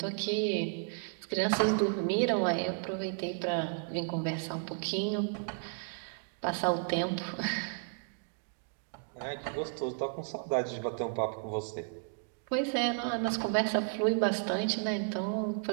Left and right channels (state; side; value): silent; left; 56 dB below the other